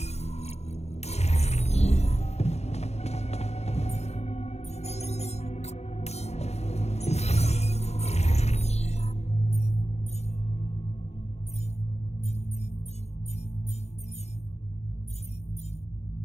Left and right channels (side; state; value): right; late; 0.31 ms